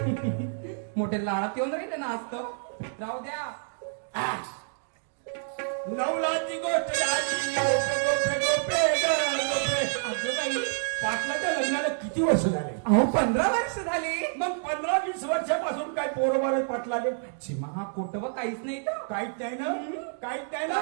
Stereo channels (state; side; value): silent; left; digital silence